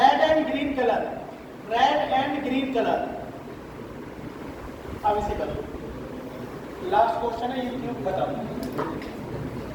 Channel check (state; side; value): identical; both; correlation 1.00